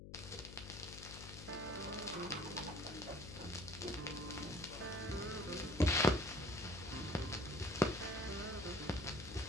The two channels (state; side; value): noise; left; hum, 12 dB below the sound